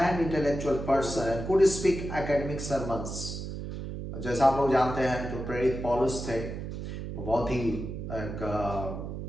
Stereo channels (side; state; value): right; noise; hum, 7 dB below the sound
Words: intellectual person and could speak academic sermons. जैसा आप लोग जानते हैं, जो प्रेरित पौलुस थे वो